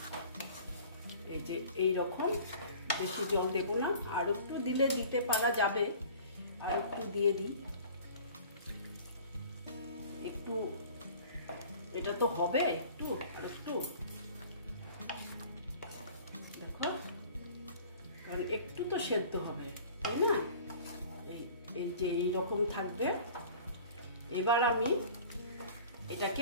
এই যে এই রকম, বেশি জল দেবো না, আর একটু দিলে দিতে পারা যাবে, আর একটু দিয়ে দিই একটু। এটা তো হবে একটু, আর একটু দেখো, কারণ একটু তো সেদ্ধ হবে, তাই না? এই যে এইরকম থাকবে। এবার আমি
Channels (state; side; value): inverted; both; correlation -0.46